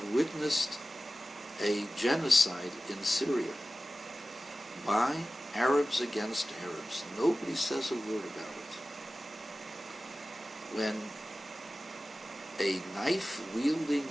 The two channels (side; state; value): both; normal; correlation 0.96